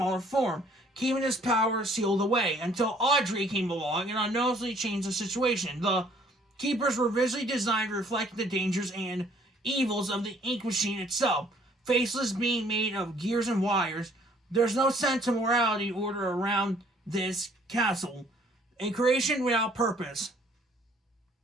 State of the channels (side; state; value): both; normal; correlation 0.60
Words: form, keeping his power sealed away, until Audrey came along and unknowingly changed the situation. The Keepers were visually designed to reflect the dangers and evils of the ink machine itself. Faceless being made of gears and wires, there's no sense of morality order around this castle. A creation without purpose.